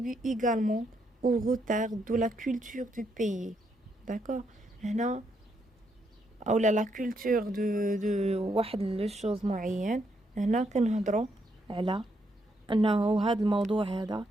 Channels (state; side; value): normal; both; correlation 0.76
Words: également au retard de la culture du pays. d'accord. هنا اولا لا كولتور دو واحد لو شوز معين. هنا كنهضروا على انه هذا الموضوع هذا